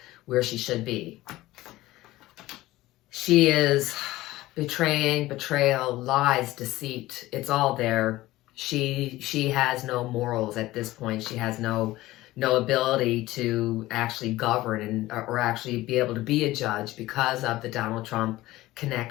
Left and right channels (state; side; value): quieter; right; 17.3 dB